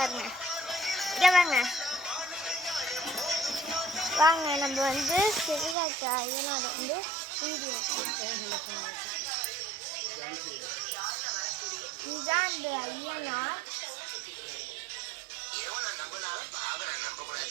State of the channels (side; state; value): left; drops out; at 5.8 s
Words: இங்கே வாங்க வாங்க. நம்ம வந்து செகரா இருக்க ஐயனார் வந்து வீடியோ இதுதான் அந்த ஐயனார்.